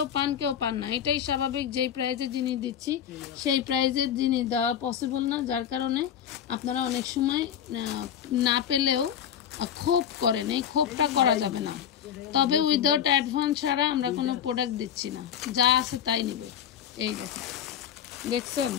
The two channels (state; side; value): quieter; right; 9.1 dB